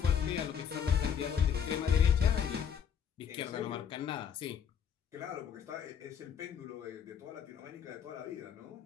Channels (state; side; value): quieter; right; 7.9 dB